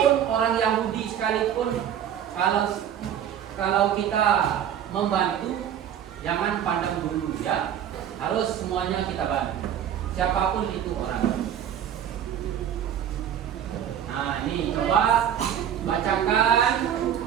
orang Yahudi sekalipun, kalau kita membantu, jangan pandang dulu ya. Harus semuanya kita bantu. Siapapun itu orang. Nah, ini coba bacakan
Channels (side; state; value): left; quieter; 9.7 dB